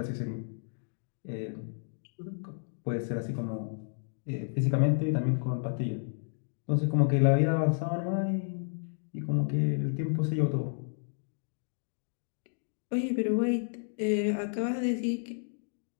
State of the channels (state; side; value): silent; right; digital silence